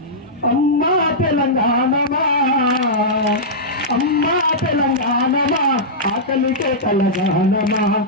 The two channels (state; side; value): normal; both; correlation -0.12